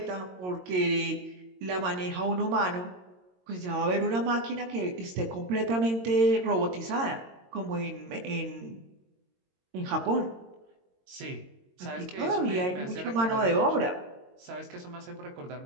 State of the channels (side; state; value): left; late; 22 ms